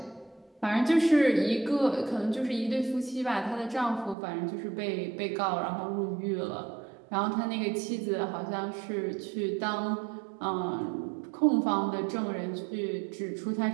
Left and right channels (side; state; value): left; drops out; at 4.2 s